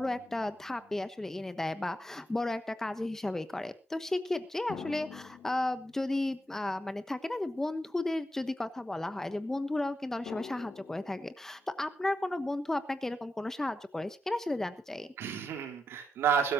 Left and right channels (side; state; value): both; normal; correlation 0.86